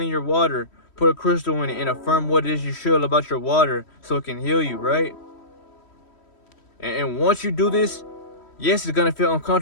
your water, put a crystal in it and affirm what it is you feel about your water so it can heal you, right? And once you do this, yes, it's gonna feel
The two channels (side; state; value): right; late; 3.1 ms